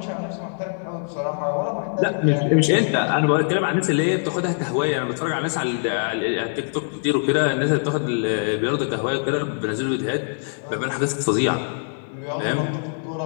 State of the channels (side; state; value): right; silent; digital silence